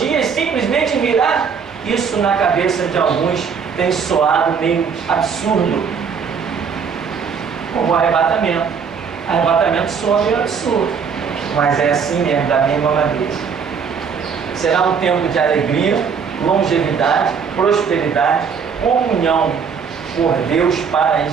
simplesmente virá. Isso na cabeça de alguns tem soado meio absurdo, como o arrebatamento. Arrebatamento soa meio absurdo, mas é assim mesmo, da mesma maneira. Será um tempo de alegria, longevidade, prosperidade, comunhão por Deus para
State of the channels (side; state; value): left; quieter; 6.3 dB